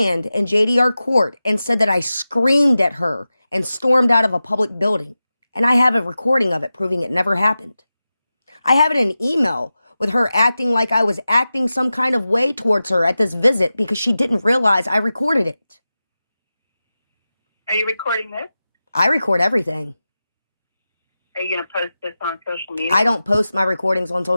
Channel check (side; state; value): both; inverted; correlation -0.94